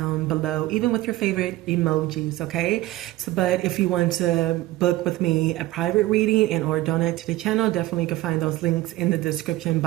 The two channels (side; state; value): left; quieter; 17.3 dB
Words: below, even with your favorite emojis, okay? But if you want to book with me a private reading and or donate to the channel, definitely you can find those links in the description